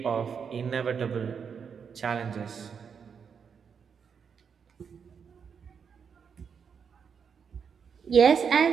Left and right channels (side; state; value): left; quieter; 6.6 dB